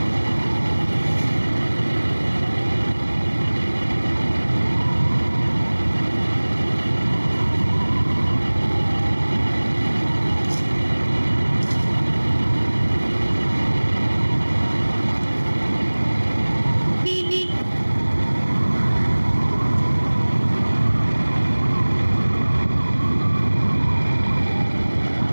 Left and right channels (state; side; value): inverted; both; correlation -1.00